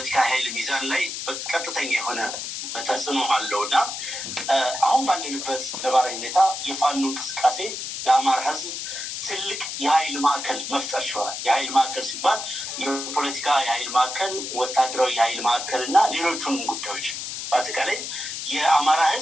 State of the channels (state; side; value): noise; left; hiss, 6 dB below the sound